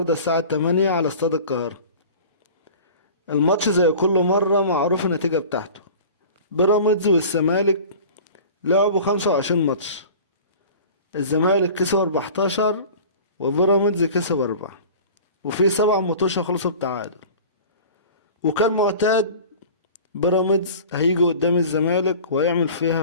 الساعة 8 على استاد القاهرة. الماتش زي كل مرة معروف النتيجة بتاعته. بيراميدز والزمالك لعبوا 25 ماتش. الزمالك كسب 14 وبيراميدز كسب 4، وفي 7 ماتشات خلصوا بتعادل. وكان معتاد بيراميدز هيجي قدام الزمالك ويعمل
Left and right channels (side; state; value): both; inverted; correlation -0.40